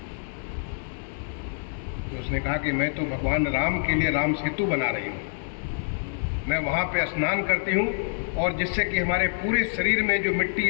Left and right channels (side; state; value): right; silent; digital silence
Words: तो उसने कहा कि मैं तो भगवान राम के लिए राम सेतु बना रही हूँ। मैं वहाँ पे स्नान करती हूँ और जिससे कि हमारे पूरे शरीर में जो मिट्टी